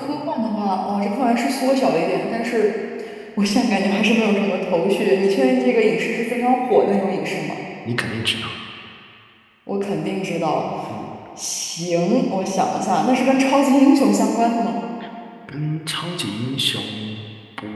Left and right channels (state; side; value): identical; both; correlation 1.00